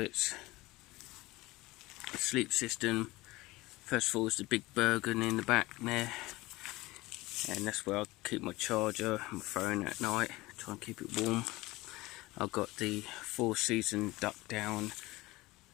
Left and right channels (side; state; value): right; quieter; 20.3 dB